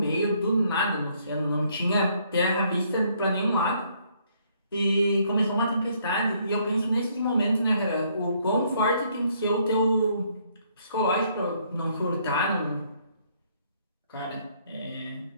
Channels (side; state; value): both; inverted; correlation -0.68